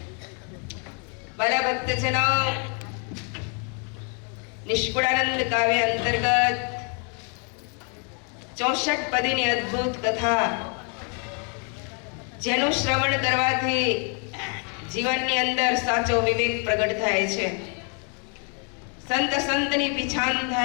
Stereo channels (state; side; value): quieter; right; 39.1 dB